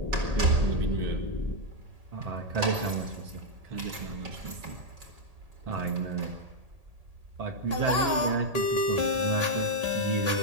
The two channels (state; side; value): late; left; 1.8 ms